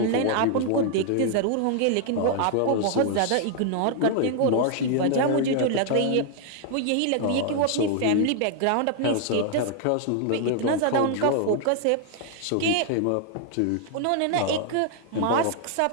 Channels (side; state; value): both; different; correlation 0.00